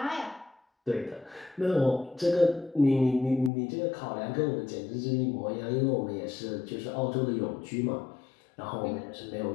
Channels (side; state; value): right; drops out; at 3.5 s